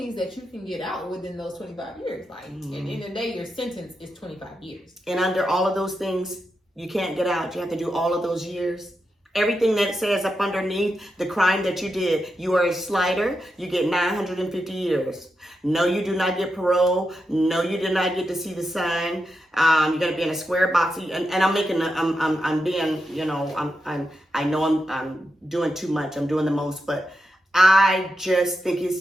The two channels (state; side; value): normal; both; correlation 0.87